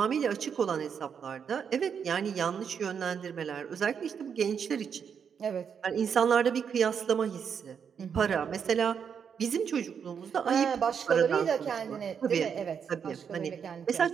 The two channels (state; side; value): quieter; left; 7.2 dB